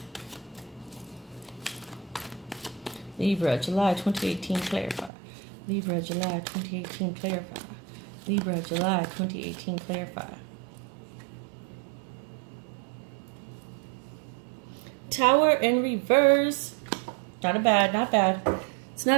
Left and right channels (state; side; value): drops out; left; at 5.1 s